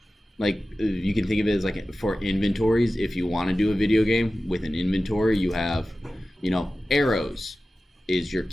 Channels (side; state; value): both; normal; correlation 0.95